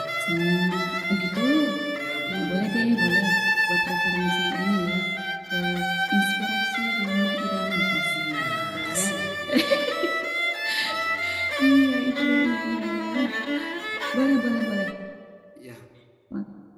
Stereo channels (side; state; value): both; identical; correlation 1.00